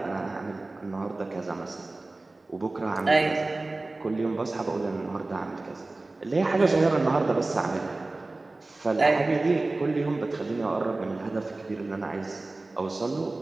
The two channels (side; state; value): left; quieter; 3.1 dB